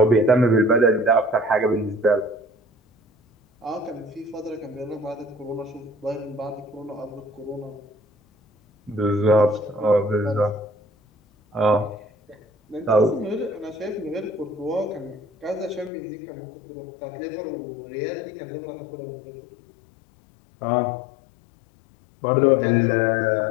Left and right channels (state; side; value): drops out; right; at 15.9 s